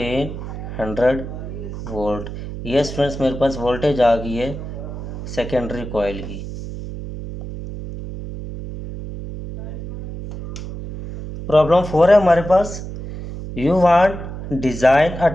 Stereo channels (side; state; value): right; noise; hum, 9 dB below the sound